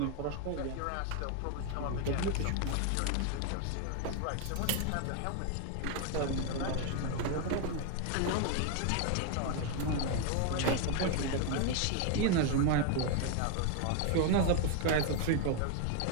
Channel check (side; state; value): both; different; correlation 0.01